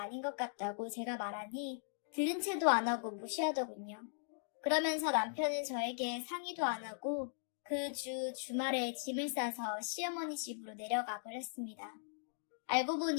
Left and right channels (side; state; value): right; silent; digital silence